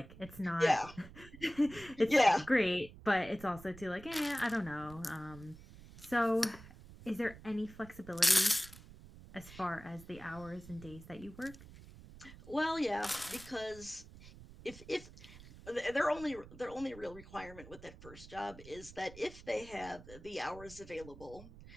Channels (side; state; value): right; noise; rumble, 17 dB below the sound